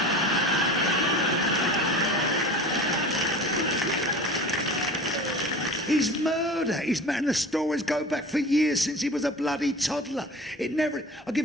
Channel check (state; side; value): normal; both; correlation 0.37